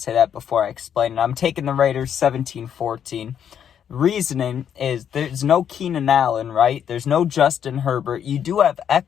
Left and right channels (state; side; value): quieter; right; 8.7 dB